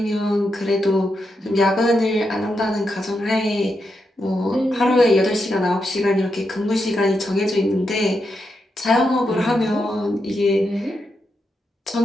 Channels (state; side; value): normal; both; correlation 0.84